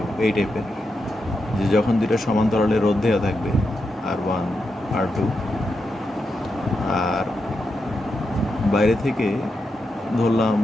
এই টাইপের, যে যখন দুইটা সমান্তরালে রোধ দেওয়া থাকবে R1 R2, আর বাইরে থেকে ধরলাম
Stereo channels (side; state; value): both; normal; correlation 0.86